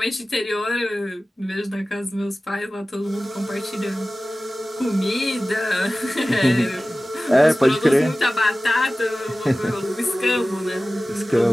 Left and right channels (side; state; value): both; normal; correlation 0.96